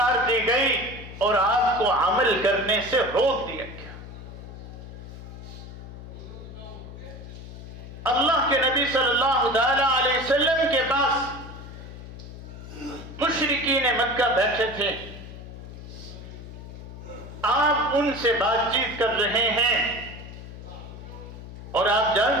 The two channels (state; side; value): noise; left; hum, 13 dB below the sound